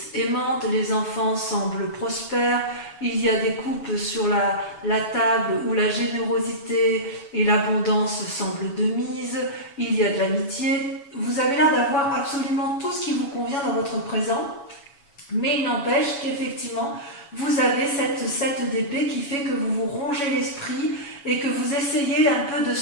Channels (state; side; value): late; right; 7.1 ms